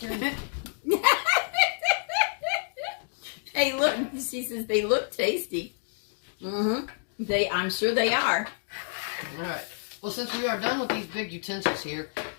Hey, look. She says they look tasty. I'm sure they are. All right. Well, since we are done with these big utensils here,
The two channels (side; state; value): right; silent; digital silence